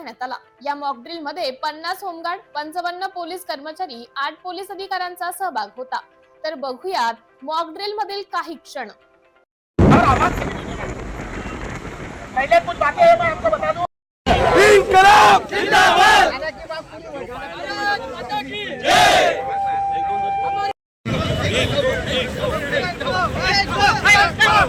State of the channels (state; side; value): identical; both; correlation 1.00